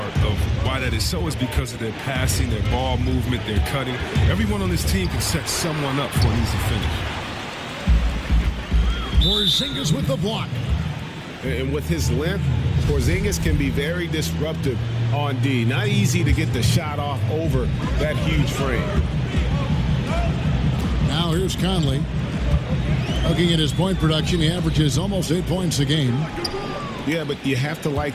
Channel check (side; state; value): both; identical; correlation 1.00